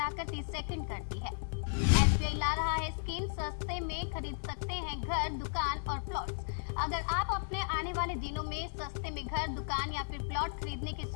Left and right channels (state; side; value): silent; right; digital silence